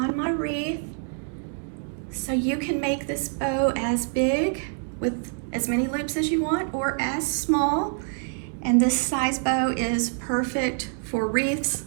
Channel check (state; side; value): silent; left; 57 dB below the other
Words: my wreath. So you can make this bow as big with as many loops as you want or as small. And this size bow is perfect for wreaths,